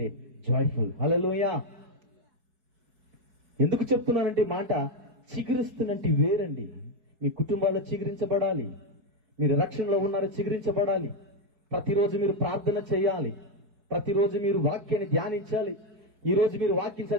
జాయ్ఫుల్. హల్లెలూయా. ఎందుకు చెప్తున్నానంటే మాట, చిగురిస్తున్నట్టు వేరండి. మీ కుటుంబాల్లో చిగురించబడాలి, మీరు రక్షణలో ఉన్నారో చిగురించబడాలి. ప్రతిరోజు మీరు ప్రార్థన చేయాలి, ప్రతిరోజు మీరు వాక్యాన్ని ధ్యానించాలి. ఈ రోజు మీరు వాక్యం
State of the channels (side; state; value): left; late; 4.7 ms